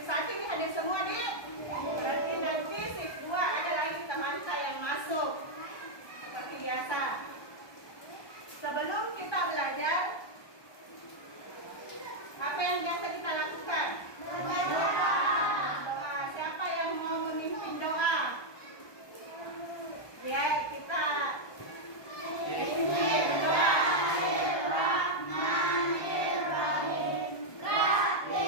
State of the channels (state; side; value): late; right; 1.2 ms